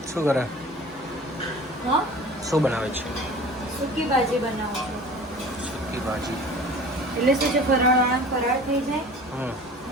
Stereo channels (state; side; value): normal; both; correlation 0.42